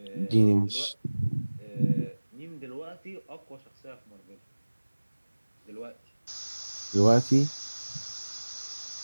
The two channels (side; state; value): both; inverted; correlation -1.00